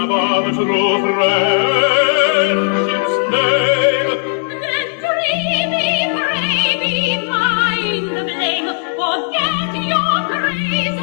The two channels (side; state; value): right; silent; 69 dB below the other